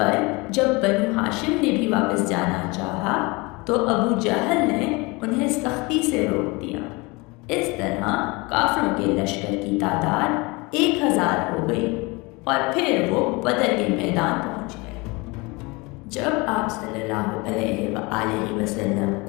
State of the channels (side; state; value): right; quieter; 25.8 dB